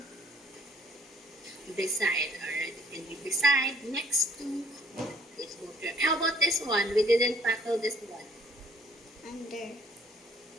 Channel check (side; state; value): both; normal; correlation 0.60